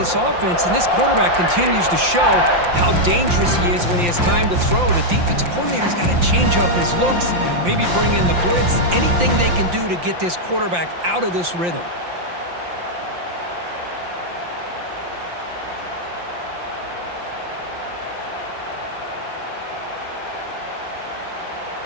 offense, and this quarterback continues to show how dangerous he is when he has time to throw. The defensive coordinator's got to change up his looks, maybe bring in the blitz, anything they can do to get this quarterback out of this rhythm.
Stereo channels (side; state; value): left; late; 5.7 ms